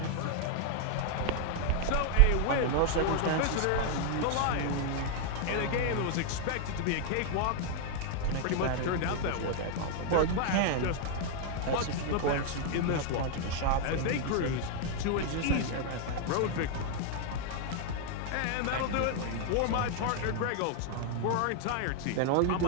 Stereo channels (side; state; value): both; different; correlation 0.00